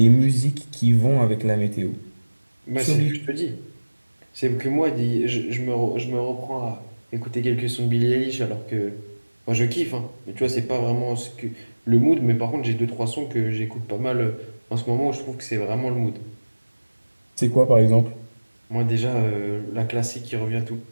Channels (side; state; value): both; inverted; correlation -1.00